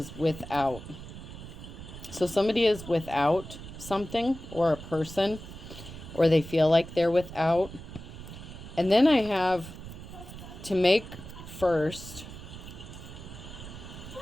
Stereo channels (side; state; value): right; noise; rumble, 13 dB below the sound